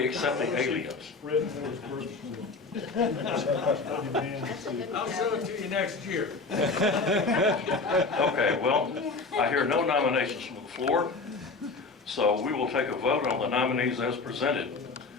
except the aliens. I'll show it to you next year. Okay, well, I hear no nominations from the floor, so we will take a vote on the nominees as presented.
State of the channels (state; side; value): quieter; right; 4.0 dB